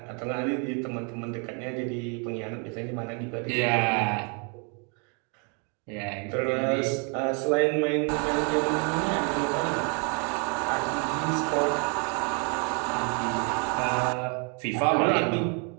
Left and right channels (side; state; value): left; quieter; 37.0 dB